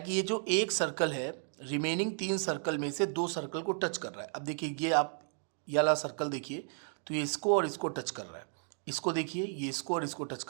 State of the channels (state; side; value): silent; left; 55 dB below the other